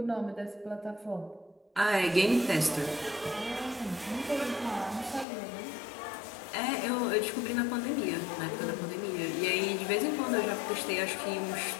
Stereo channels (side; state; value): right; drops out; at 5.2 s